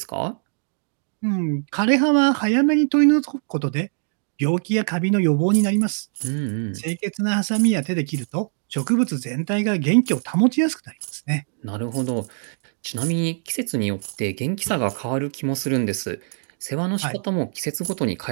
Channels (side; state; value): left; silent; 60 dB below the other